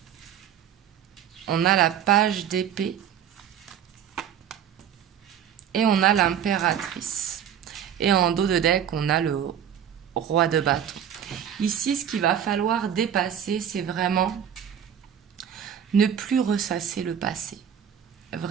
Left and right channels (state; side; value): quieter; left; 9.0 dB